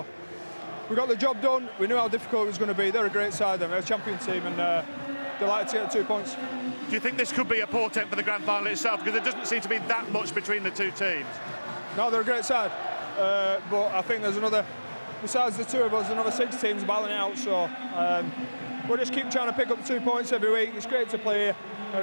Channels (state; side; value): inverted; both; correlation -1.00